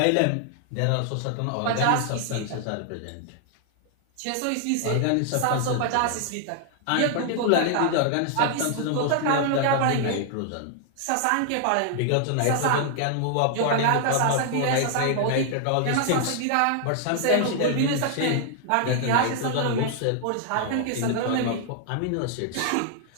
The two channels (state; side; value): different; both; correlation 0.00